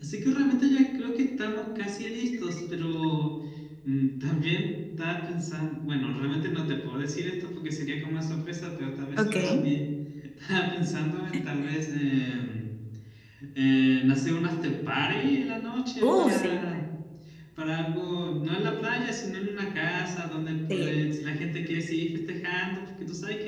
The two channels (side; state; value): both; identical; correlation 1.00